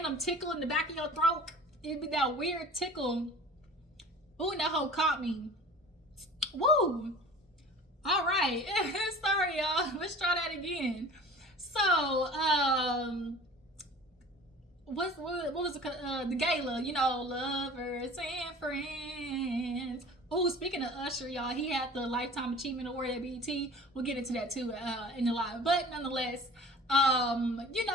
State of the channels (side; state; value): both; normal; correlation 0.42